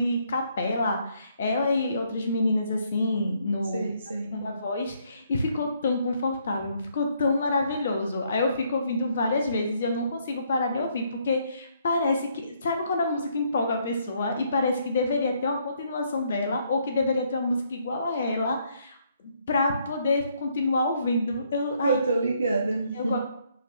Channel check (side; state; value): both; inverted; correlation -0.70